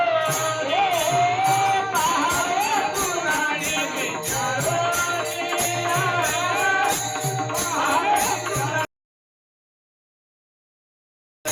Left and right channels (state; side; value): identical; both; correlation 1.00